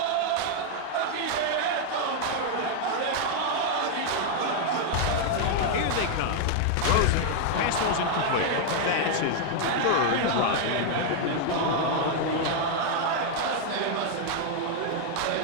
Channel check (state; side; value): different; both; correlation 0.00